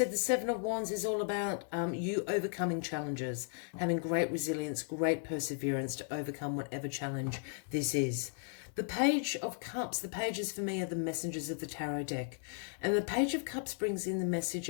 the Seven of Wands is all about you overcoming challenges, having great resilience, great perseverance to overcome whatever challenge this is. The Page of Cups, the pages for me are the messengers of the tarot deck. And the Page of Cups brings in the message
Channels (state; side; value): silent; right; 54 dB below the other